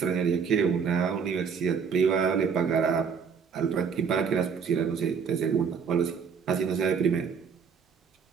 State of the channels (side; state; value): left; quieter; 6.3 dB